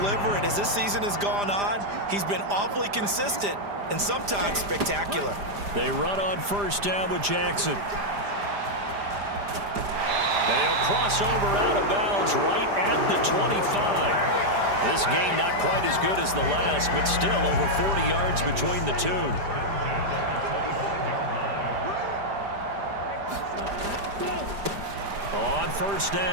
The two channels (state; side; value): late; left; 5.0 ms